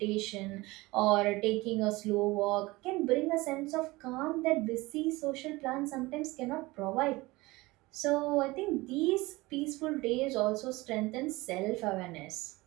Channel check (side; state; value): left; quieter; 21.4 dB